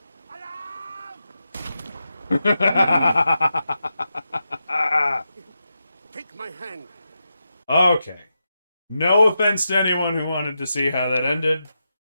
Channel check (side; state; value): both; inverted; correlation -0.88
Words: Take my hand. Okay. No offense to anyone who wanted to see how that ended.